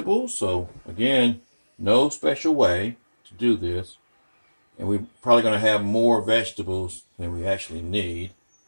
So again, no special way to do this. And we're probably going to have more vegetables than we actually need.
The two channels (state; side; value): inverted; both; correlation -1.00